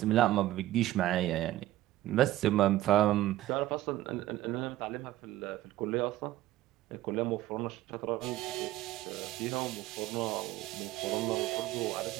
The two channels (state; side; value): quieter; left; 15.0 dB